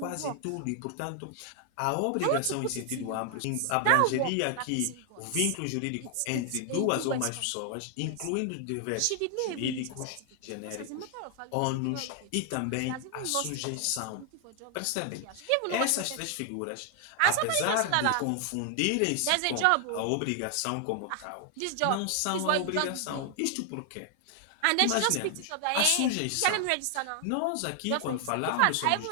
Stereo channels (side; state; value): both; different; correlation 0.00